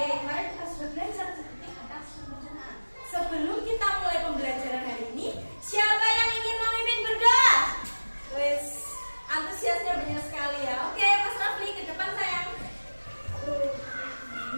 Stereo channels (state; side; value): inverted; both; correlation -1.00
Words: kemarin kita sudah belajar sedikit tentang sistem pencernaan. Sebelum kita mulai pembelajaran hari ini, siapa yang ingin memimpin berdoa? Wes, antusiasnya banyak sekali ya. Oke, Mas Rafli ke depan sayang.